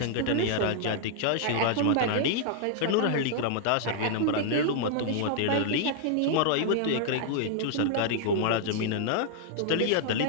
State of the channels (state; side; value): different; both; correlation -0.01